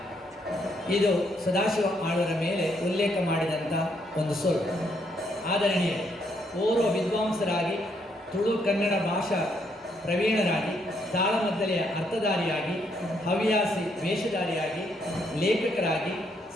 ಇದು ಸದಾಶಿವ ಆಳ್ವರ ಮೇಲೆ ಉಲ್ಲೇಖ ಮಾಡಿದಂಥ ಒಂದು ಸೊಲ್ಲು. ಆದರಣೀಯ ಓರ್ವ ವಿದ್ವಾಂಸರಾಗಿ ತುಳು ಕನ್ನಡ ಭಾಷಾ ಪ್ರವೀಣರಾಗಿ, ತಾಳಮದ್ದಲೆಯ ಅರ್ಥಧಾರಿಯಾಗಿ, ಹವ್ಯಾಸಿ ವೇಷಧಾರಿಯಾಗಿ, ಲೇಖಕರಾಗಿ,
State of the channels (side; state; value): both; normal; correlation 0.74